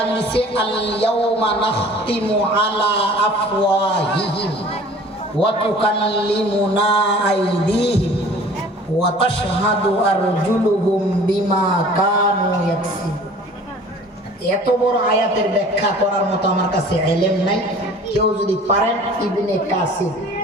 দিছে আল ইয়াউমা নাখতিমু আলা আফওয়াহিহিম ওয়া তুকাল্লিমুনা আইদিহিম ওয়া তাশহাদু আরজুলুহুম বিমা কানু ইয়াকসিবুন। এত বড় আয়াতের ব্যাখ্যা করার মতো আমার কাছে ইলম নাই। কেউ যদি পারেন ইবনে কাসির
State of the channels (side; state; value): both; normal; correlation 0.47